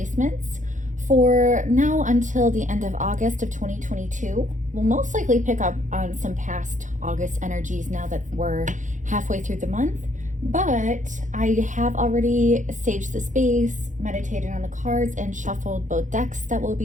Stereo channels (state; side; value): late; left; 0.36 ms